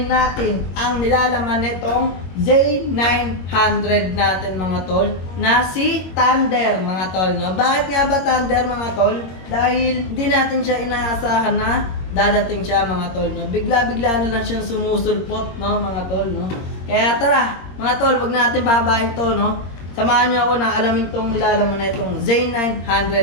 natin ang nilalaman nitong Z900 natin mga tol, na si Thunder mga tol, no? Bakit nga ba Thunder mga tol? Dahil hindi natin siya inaasahan na dadating siya mga tol, no? Bigla-bigla na lang siyang sumusulpot, no mga tol, no? Kaya tara mga tol, wag natin babahin to, no? Samahan niyo ako na alamin tong nilalaman na itong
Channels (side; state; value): right; late; 22 ms